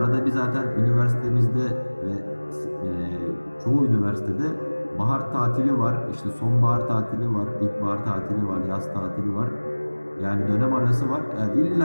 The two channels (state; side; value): inverted; both; correlation -1.00